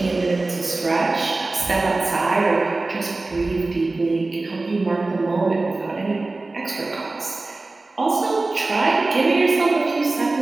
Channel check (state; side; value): quieter; left; 3.3 dB